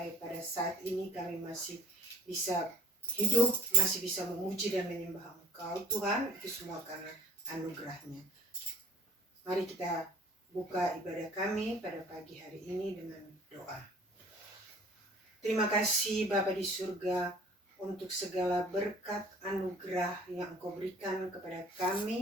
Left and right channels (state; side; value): normal; both; correlation 0.51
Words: pada saat ini kami masih bisa hidup, masih bisa memuji dan menyembah Engkau Tuhan. Itu semua karena anugerah-Nya. Mari kita buka ibadah kami pada pagi hari ini dengan doa. Terima kasih Bapa di surga untuk segala berkat anugerah yang Engkau berikan kepada